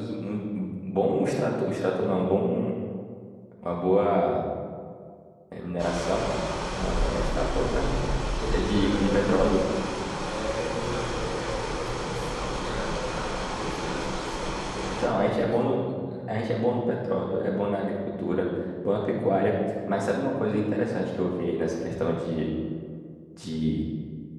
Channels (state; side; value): identical; both; correlation 1.00